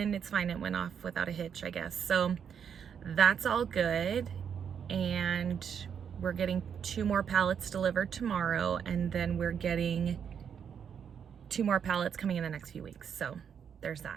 it's fine. It went off without a hitch, I guess. So that's all good. And we're getting 2 more pallets delivered tomorrow, and then we're getting 2 more pallets coming in the next few weeks. So there's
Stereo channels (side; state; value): left; quieter; 7.6 dB